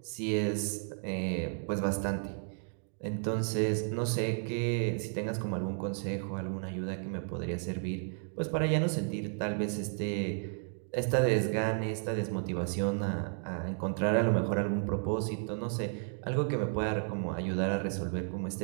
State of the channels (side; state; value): left; silent; 56 dB below the other